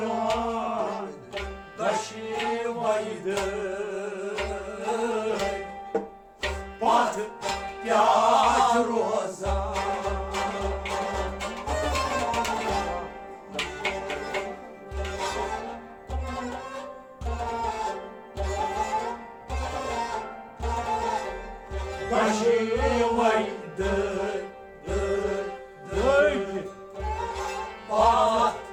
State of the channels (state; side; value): identical; both; correlation 1.00